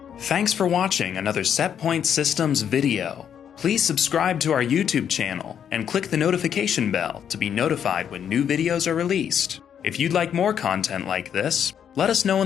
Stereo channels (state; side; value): quieter; right; 8.6 dB